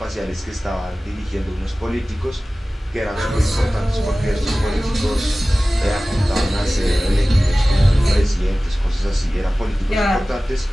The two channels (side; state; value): both; normal; correlation 0.97